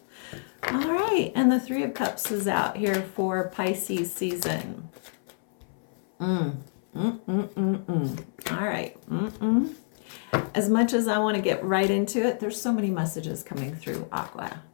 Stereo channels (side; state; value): right; silent; 60 dB below the other